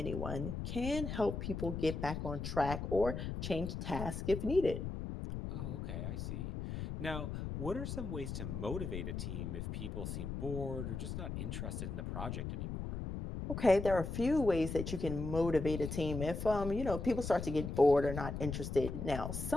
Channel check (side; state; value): left; noise; rumble, 5 dB below the sound